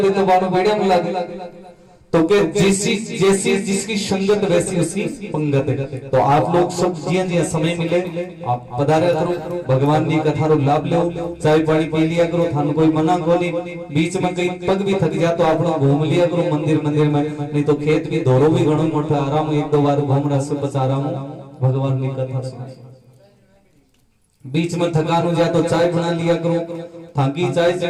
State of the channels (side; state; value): both; identical; correlation 1.00